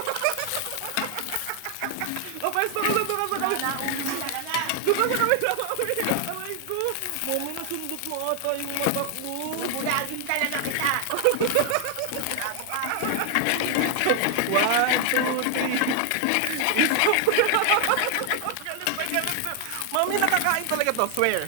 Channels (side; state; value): both; different; correlation 0.00